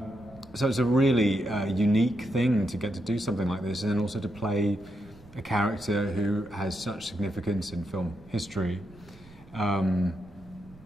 So it's a really unique thing to get to do something like this, and then also to play a character who has such significance in film history.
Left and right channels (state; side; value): noise; right; rumble, 24 dB below the sound